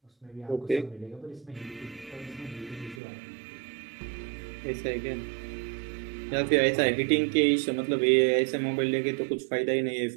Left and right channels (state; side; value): drops out; left; at 3.0 s